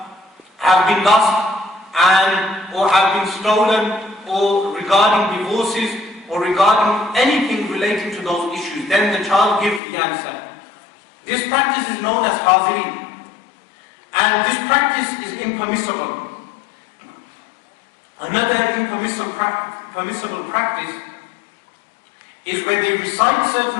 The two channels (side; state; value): right; drops out; at 9.8 s